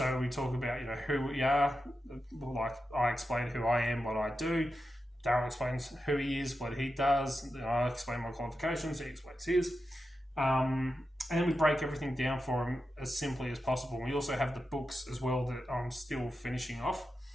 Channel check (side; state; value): both; normal; correlation 0.89